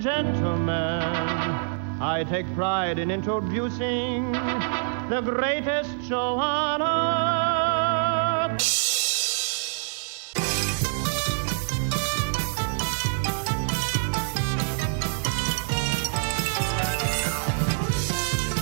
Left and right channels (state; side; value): silent; left; 61 dB below the other